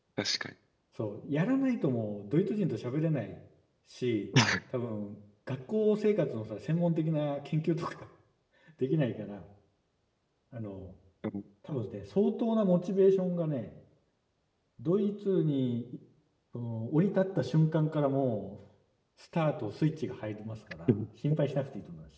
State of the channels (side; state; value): both; identical; correlation 1.00